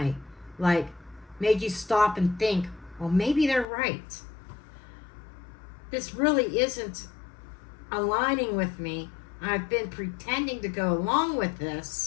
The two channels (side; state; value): right; drops out; at 3.7 s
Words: Like, made you stop and think, well, maybe they're right. This really isn't aligning with me. I've been pretending to go along with